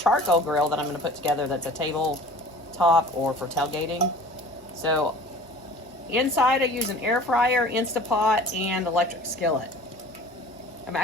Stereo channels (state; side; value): normal; both; correlation 0.44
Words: grill that I'm going to put together that's a tabletop or for tailgating. So inside I use an air fryer, instapot, and electric skillet. I'm